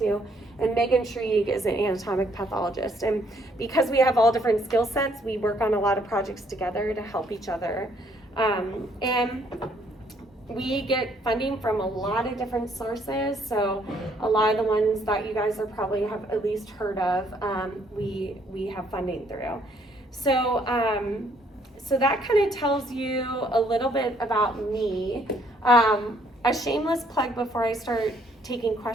to. And Megan Shrieg is an anatomic pathologist. And because we have all different skill sets, we work on a lot of projects together to help each other. And we get funding from a lot of different sources. So a lot of the ones that you guys are probably have at least heard of, we have funding through. So, so that kind of tells you a little bit about me. A shameless plug before I start taking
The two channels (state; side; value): normal; both; correlation 0.67